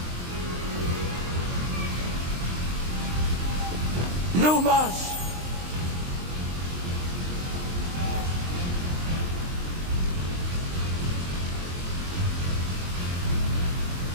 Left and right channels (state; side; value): late; left; 23 ms